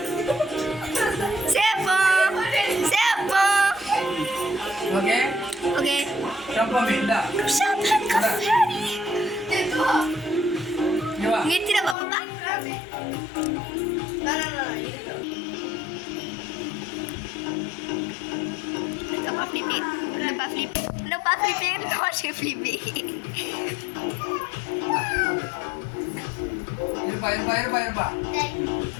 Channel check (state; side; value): drops out; right; at 12.0 s